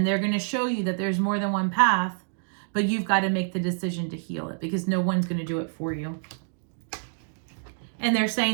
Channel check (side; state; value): left; silent; 60 dB below the other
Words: they're going to show you that there's more than one path, but you've got to make the decision to heal it, because no one's going to do it for you. And they're